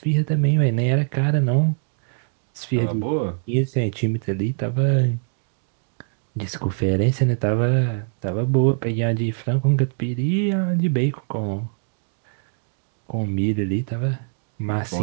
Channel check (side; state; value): left; silent; digital silence